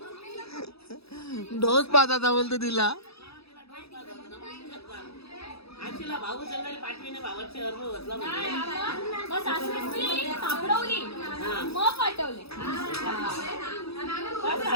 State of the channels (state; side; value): late; right; 0.77 ms